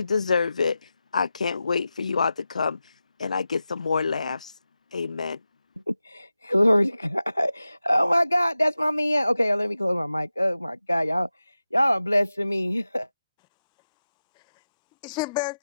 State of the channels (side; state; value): both; inverted; correlation -0.93